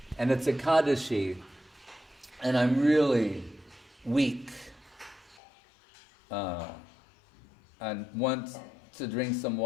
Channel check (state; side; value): drops out; right; at 5.4 s